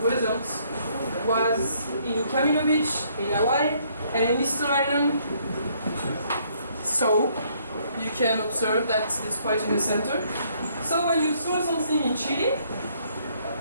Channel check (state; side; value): inverted; both; correlation -0.67